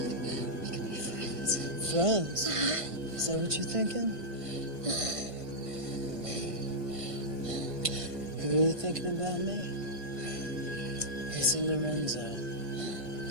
We can be friends. Friends? Is that what you're thinking? You really thinking about me? Listen, Lorenzo, it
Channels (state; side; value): late; left; 1.6 ms